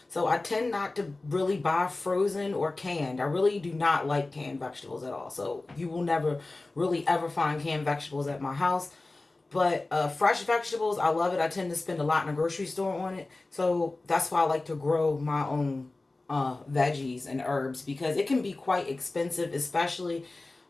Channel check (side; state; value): right; quieter; 3.1 dB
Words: so I tend not to really buy frozen or canned. I really do not like canned vegetables at all, so you will never really ever find canned vegetables at my house. But fresh vegetables, I love it. I tend to spend a lot in a grocery store on it, so that's why I like to grow my own veggies and herbs, because it can be quite expensive, especially